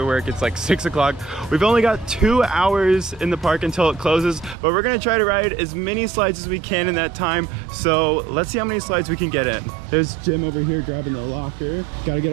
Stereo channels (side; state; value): left; drops out; at 4.5 s